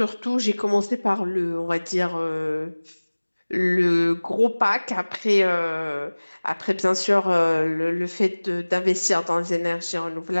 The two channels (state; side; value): inverted; both; correlation -1.00